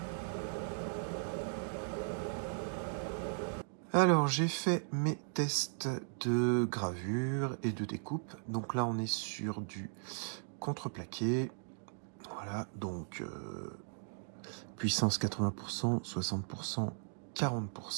Alors j'ai fait mes tests de gravure et de découpe. Donc là on est sur du contreplaqué. Voilà, donc puissance 80%, 60%,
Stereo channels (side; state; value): left; silent; digital silence